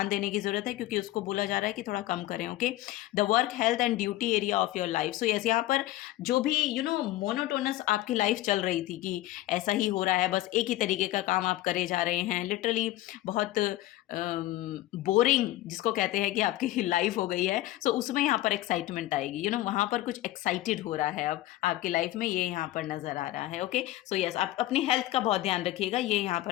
देने की जरूरत है, क्योंकि उसको बोला जा रहा है कि थोड़ा कम करें। Okay, the work, health and duty area of your life. So yes, यहाँ पर जो भी मोनोटोनस आपकी लाइफ चल रही थी कि ऐसा ही हो रहा है, बस एक ही तरीके का काम आप करे जा रहे हैं, लिटरली बहुत बोरिंग जिसको कहते हैं कि आपकी लाइफ हो गई है। सो उसमें यहाँ पर एक्साइटमेंट आएगी। वहाँ पर कुछ एक्साइटेड हो रहा है अब आपकी लाइफ में, ये यहाँ पर नजर आ रहा है। ओके, सो यस, आप अपनी हेल्थ का बहुत ध्यान रखिएगा, ये यहाँ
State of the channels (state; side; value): quieter; right; 15.9 dB